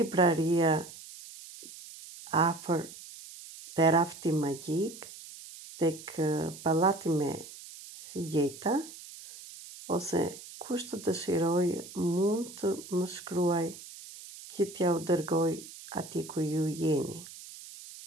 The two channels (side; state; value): right; noise; hiss, 15 dB below the sound